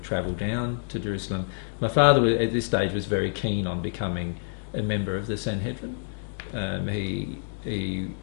travel down to Jerusalem. My father at this stage was very keen on becoming a member of the Sanhedrin. He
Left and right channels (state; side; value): silent; right; digital silence